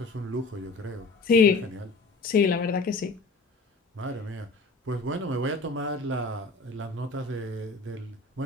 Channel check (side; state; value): right; quieter; 3.6 dB